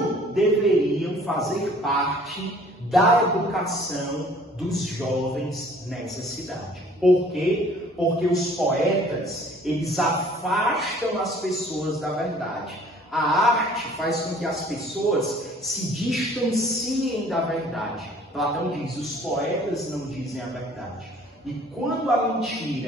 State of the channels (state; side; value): normal; both; correlation 0.54